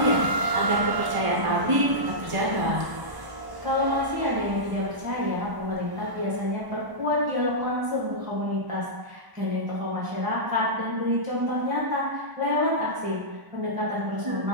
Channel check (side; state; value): left; late; 1.0 ms